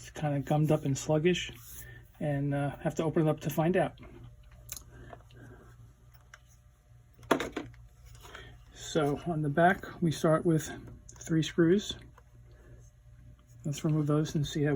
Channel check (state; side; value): identical; both; correlation 1.00